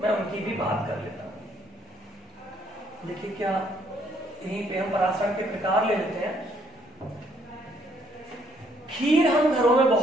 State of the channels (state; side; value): normal; both; correlation 0.67